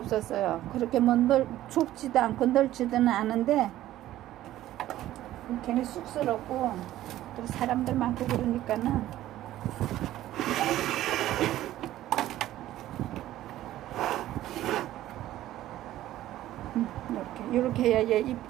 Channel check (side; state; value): left; quieter; 14.1 dB